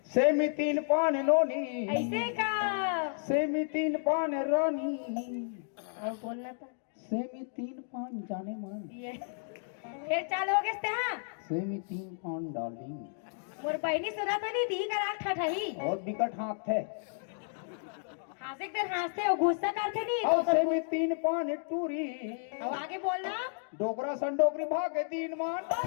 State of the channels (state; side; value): silent; right; digital silence